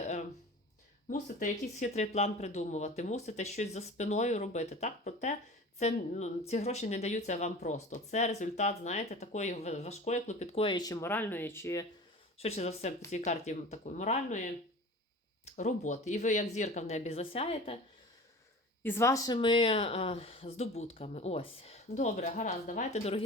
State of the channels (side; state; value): both; normal; correlation 0.38